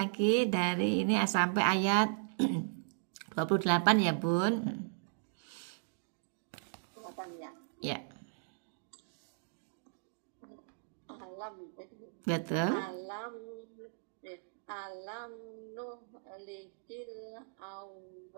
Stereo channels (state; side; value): silent; left; digital silence